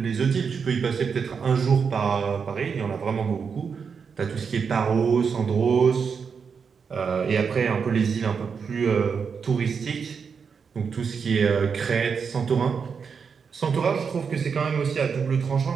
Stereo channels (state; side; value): quieter; left; 6.0 dB